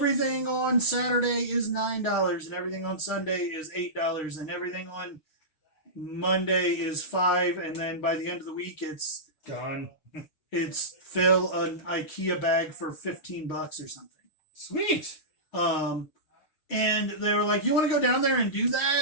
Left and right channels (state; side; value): late; right; 6.4 ms